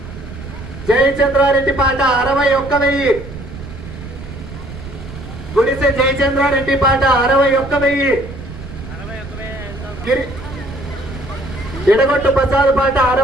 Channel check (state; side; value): noise; right; rumble, 12 dB below the sound